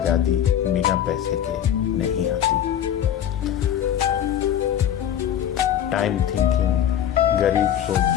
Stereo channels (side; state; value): right; quieter; 10.3 dB